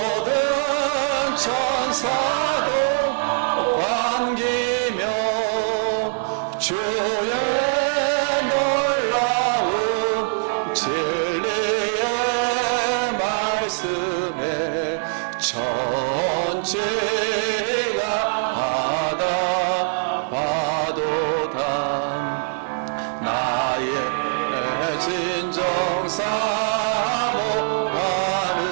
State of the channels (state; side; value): silent; left; digital silence